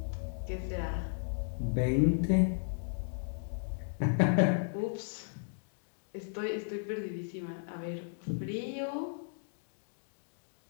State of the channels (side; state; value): right; silent; digital silence